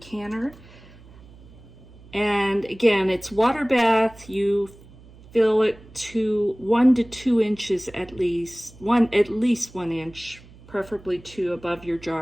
And again, it's water bath. You fill it to 1 to 2 inches at least 1 inch, preferably 2 above your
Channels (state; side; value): noise; right; hum, 22 dB below the sound